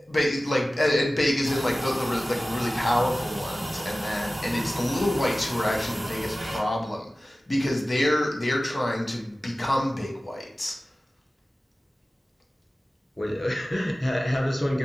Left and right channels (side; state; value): both; normal; correlation 0.96